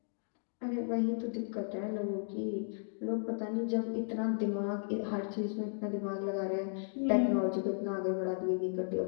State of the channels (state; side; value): silent; right; digital silence